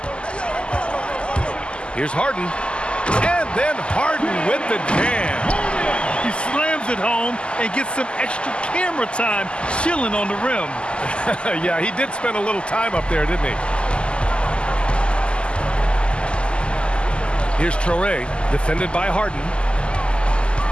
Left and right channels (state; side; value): late; right; 0.051 ms